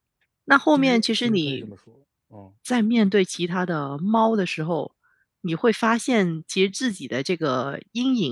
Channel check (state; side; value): identical; both; correlation 1.00